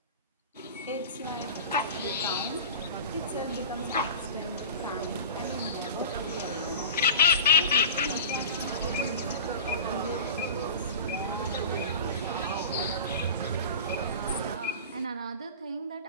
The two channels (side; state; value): both; inverted; correlation -0.34